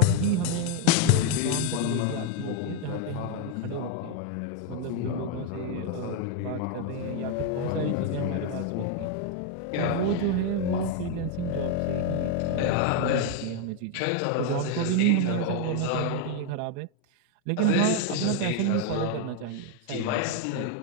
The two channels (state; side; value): different; both; correlation 0.01